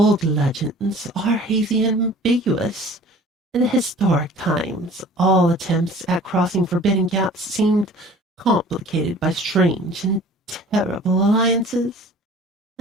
legends are hazy and ambiguous. In historic times, all attempts at crossing forbidden gaps seemed complicated by strange and terrible alliances,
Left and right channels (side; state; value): both; normal; correlation 0.47